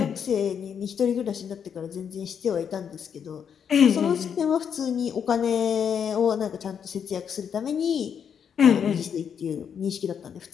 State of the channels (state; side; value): quieter; right; 7.6 dB